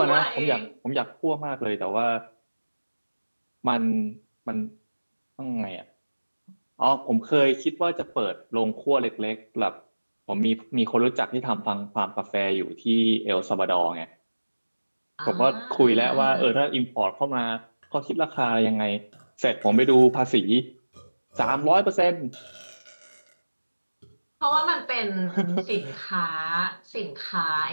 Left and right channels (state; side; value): inverted; both; correlation -1.00